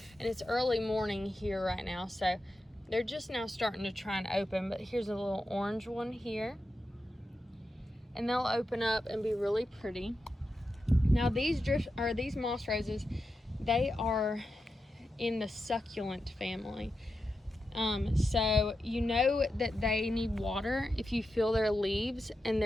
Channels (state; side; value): normal; both; correlation 0.89